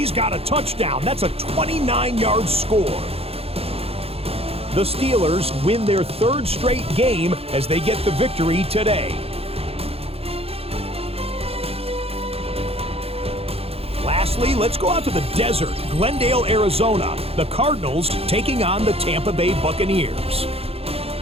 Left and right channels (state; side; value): late; left; 0.29 ms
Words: got a touchdown. That's a 29-yard score. The Steelers win their 3rd straight game as they get the victory today. Lastly, let's go out to the desert, Glendale, Arizona. The Cardinals taking on the Tampa Bay Buccaneers.